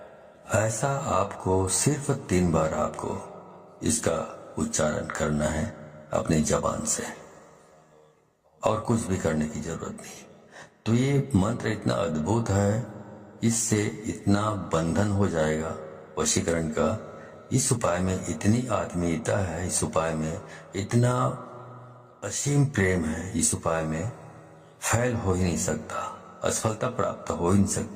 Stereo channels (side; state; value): both; identical; correlation 1.00